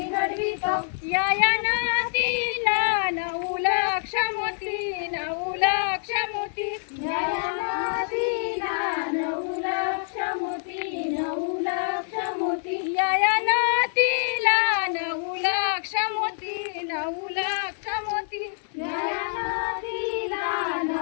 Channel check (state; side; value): silent; right; digital silence